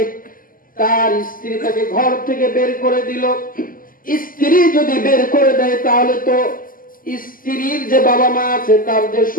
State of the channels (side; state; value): right; late; 0.41 ms